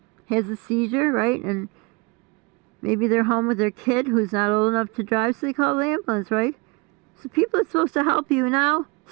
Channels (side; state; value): left; quieter; 27.9 dB